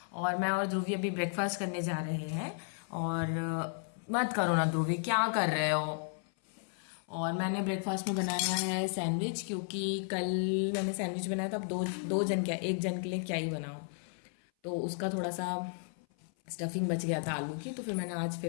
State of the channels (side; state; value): right; silent; 55 dB below the other